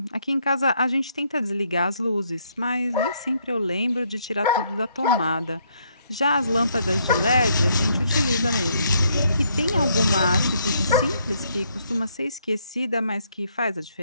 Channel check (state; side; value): inverted; both; correlation -0.72